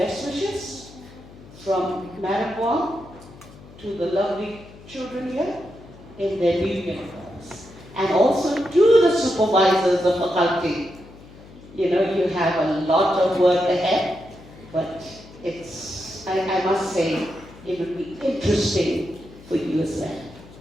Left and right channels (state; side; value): noise; left; hum, 20 dB below the sound